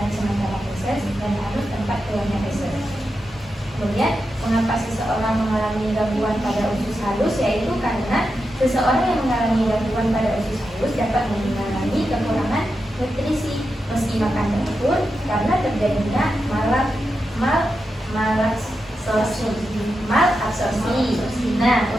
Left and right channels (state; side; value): normal; both; correlation 0.88